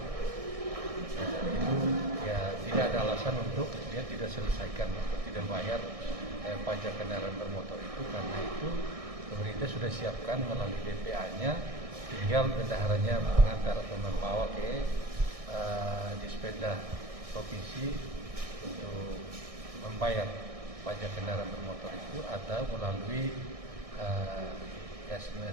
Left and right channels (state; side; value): late; left; 1.6 ms